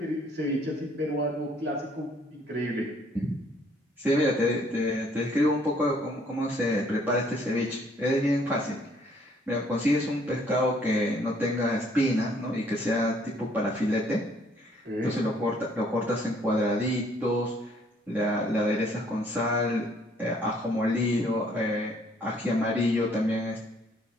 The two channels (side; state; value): both; normal; correlation 0.63